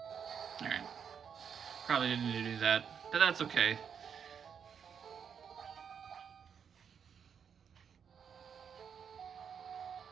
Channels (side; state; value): left; quieter; 7.3 dB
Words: Alright. Probably didn't need to do that, but that's okay.